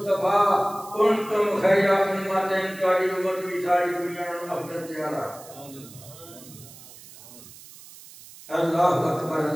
کنتم خیر امت، تہاڈی امت بھی ساری دنیا نال افضل تے اعلیٰ۔ اللہ اکبر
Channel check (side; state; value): right; noise; hiss, 19 dB below the sound